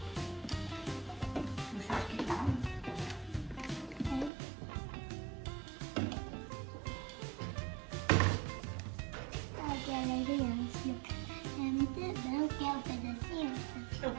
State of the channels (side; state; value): left; drops out; at 4.3 s